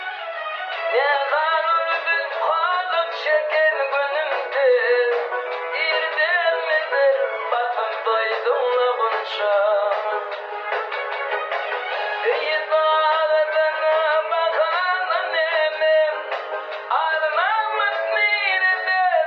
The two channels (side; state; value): both; identical; correlation 1.00